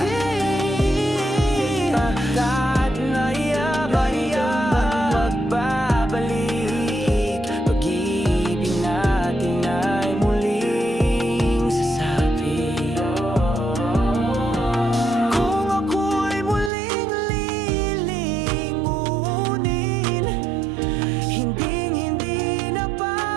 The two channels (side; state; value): left; drops out; at 16.7 s